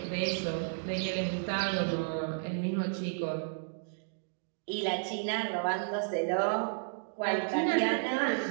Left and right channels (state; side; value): silent; left; digital silence